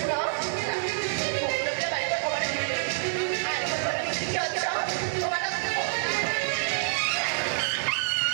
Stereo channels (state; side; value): silent; left; digital silence